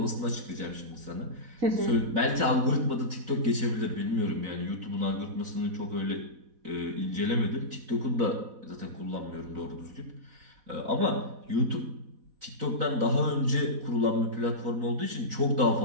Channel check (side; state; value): left; late; 4.0 ms